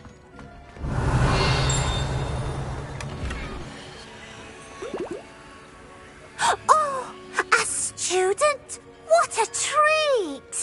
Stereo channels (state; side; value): identical; both; correlation 1.00